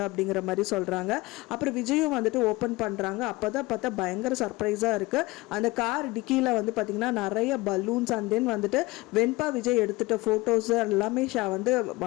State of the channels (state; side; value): quieter; right; 21.6 dB